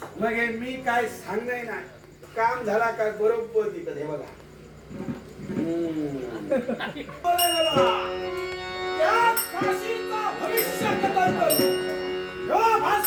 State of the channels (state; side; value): identical; both; correlation 1.00